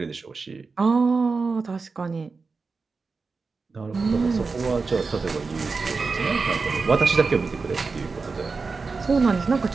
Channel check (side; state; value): left; quieter; 4.4 dB